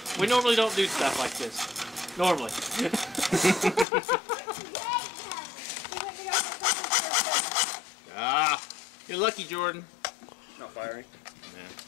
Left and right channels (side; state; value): right; drops out; at 3.9 s